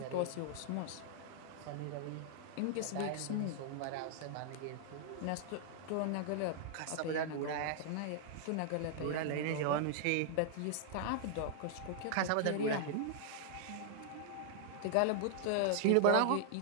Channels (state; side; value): different; both; correlation -0.01